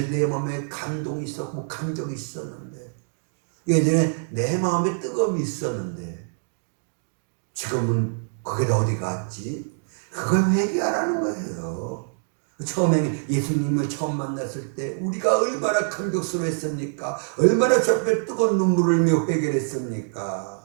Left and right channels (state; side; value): silent; left; 62 dB below the other